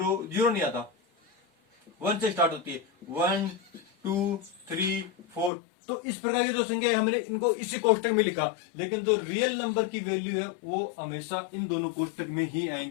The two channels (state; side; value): drops out; right; at 5.5 s